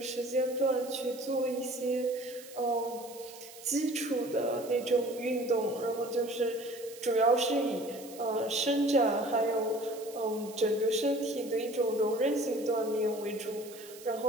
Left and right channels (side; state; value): right; noise; hiss, 18 dB below the sound